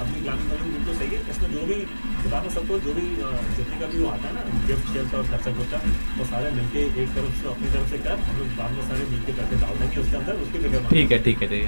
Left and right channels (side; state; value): both; inverted; correlation -1.00